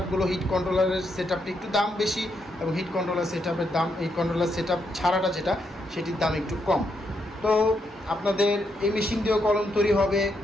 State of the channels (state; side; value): normal; both; correlation 0.79